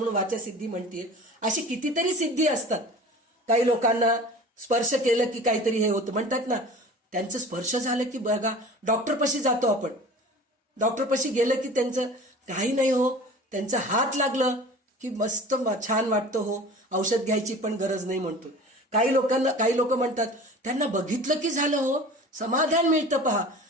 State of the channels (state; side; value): normal; both; correlation 0.40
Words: वाचा सिद्धी म्हणतीये. अशी कितीतरी सिद्धी असतात. काही लोकांना स्पर्श केलं की काहीतरी हे होतं म्हणतात ना, त्यांचं स्पर्श झालं की बघा डॉक्टरपाशी जातो आपण, डॉक्टरपाशी गेलं की त्यांचं काही नाही हो, त्यांचा हात लागलं की मस्त छान वाटतं हो, औषध घ्यायची पण गरज नाही म्हणतो. काही लोक म्हणतात त्यांना बघितलं की झालं हो, समाधान मिळतं पहा.